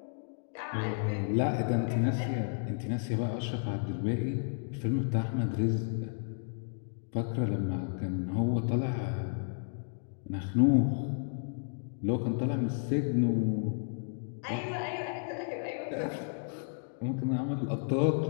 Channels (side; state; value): right; silent; digital silence